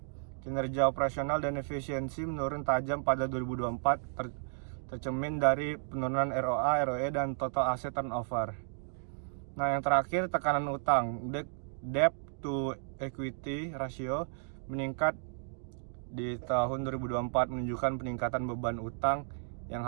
kinerja operasional dan efisiensi menurun tajam pada 2024, tercermin dari penurunan ROA, ROE, dan total asset turnover. Nah, yang terakhir, tekanan utang. Debt to equity ratio meningkat di tahun 2024, menunjukkan peningkatan beban utang yang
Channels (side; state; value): left; silent; digital silence